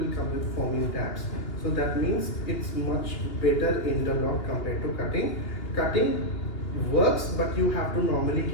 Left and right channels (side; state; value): right; late; 2.8 ms